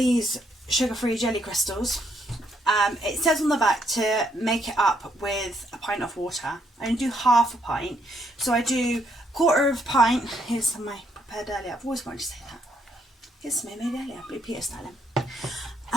sugar-free jelly crystals. It says on the back to make it up with a pint of water. I only do half a pint. So I do 1/4 of a pint. Here's some of my prepared earlier. I've always wanted to say that. Here's some I made earlier, Blue Peter styling.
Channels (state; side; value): normal; both; correlation 0.73